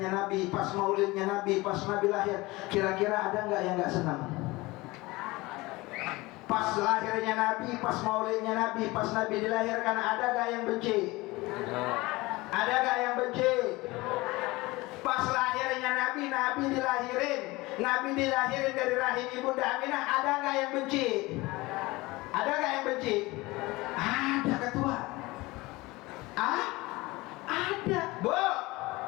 Nabi, pas maulidnya Nabi, pas Nabi lahir, kira-kira ada nggak yang nggak senang? Pas lahirnya Nabi, pas maulidnya Nabi, pas Nabi dilahirkan, ada nggak yang benci? Ada nggak yang benci? Pas lahirnya Nabi, Nabi dilahirin dari rahim Ibunda Aminah, ada nggak yang benci? Ada nggak yang benci? Ada ketua. Ada, Bu.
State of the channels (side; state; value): right; quieter; 21.5 dB